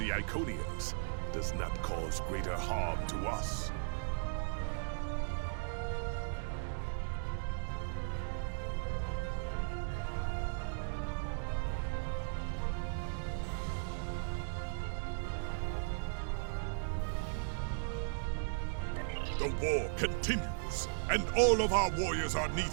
Iconians does not cause greater harm to us. The war continues, and all of our warriors are needed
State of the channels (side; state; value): left; silent; digital silence